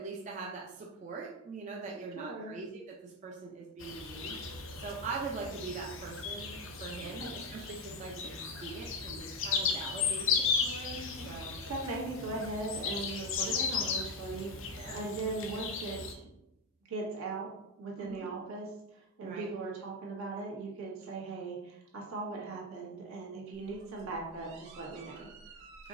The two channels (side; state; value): both; normal; correlation 0.09